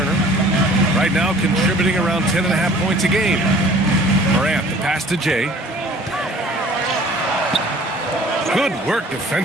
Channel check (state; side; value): normal; both; correlation 0.50